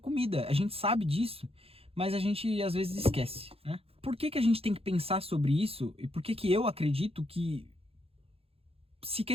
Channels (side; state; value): left; late; 0.28 ms